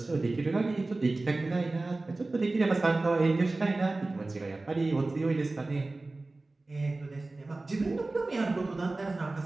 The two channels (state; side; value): quieter; left; 3.2 dB